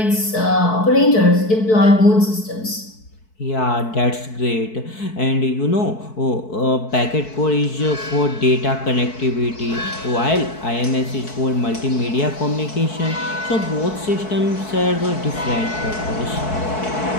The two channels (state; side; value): late; right; 4.6 ms